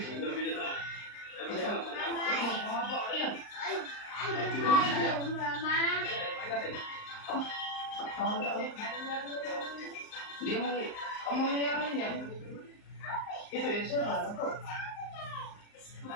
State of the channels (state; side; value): late; right; 38 ms